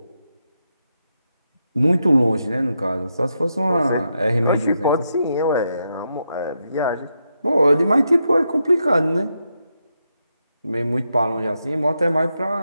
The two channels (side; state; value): both; inverted; correlation -0.83